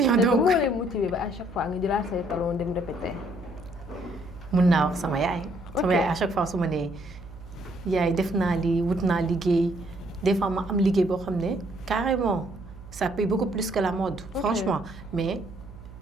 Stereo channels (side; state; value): right; noise; hum, 16 dB below the sound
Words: donc moo lay motivé ba à chaque fois nga jëlaat say talons dem répéter. mun naa wax sama yaay. sama yaay à chaque fois su ma nee yaay def naa lii wut naa liggéey. des fois ma am liggéey boo xam ne carrément ça paye beaucoup plus que la mode. franchement mais